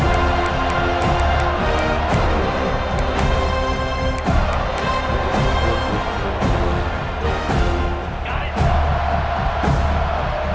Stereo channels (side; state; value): both; identical; correlation 1.00